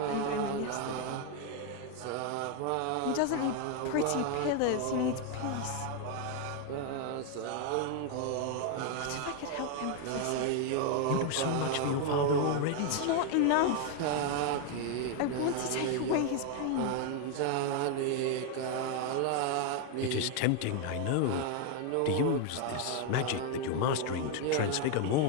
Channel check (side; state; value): both; different; correlation 0.01